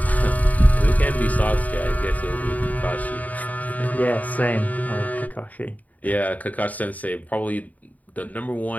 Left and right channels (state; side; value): late; right; 0.075 ms